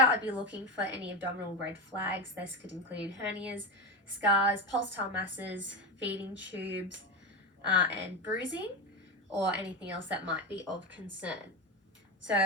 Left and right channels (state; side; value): normal; both; correlation 0.16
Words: I'd be looking for any abdominal red flags. This could include hernias, scars, pulsatile masses, feeding tubes, and bruising, or anything else that might be of concern. So